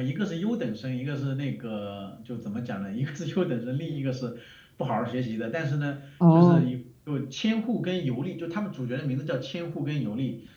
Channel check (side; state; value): both; identical; correlation 1.00